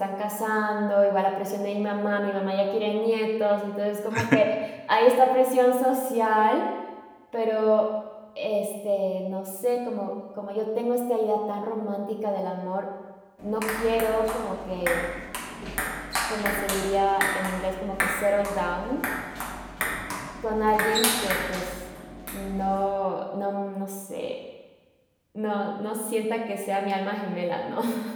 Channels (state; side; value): identical; both; correlation 1.00